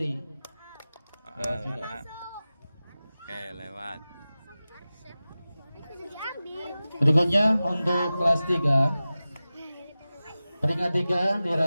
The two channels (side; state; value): both; inverted; correlation -0.96